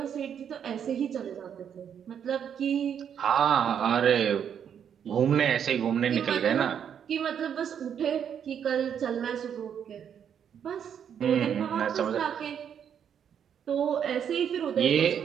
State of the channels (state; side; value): quieter; left; 8.4 dB